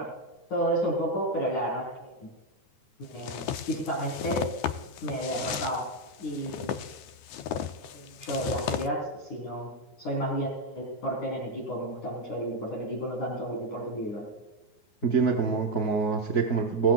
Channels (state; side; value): late; right; 9.5 ms